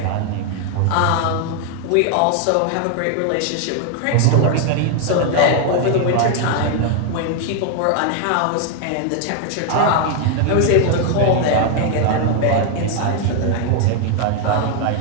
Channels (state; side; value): different; both; correlation 0.00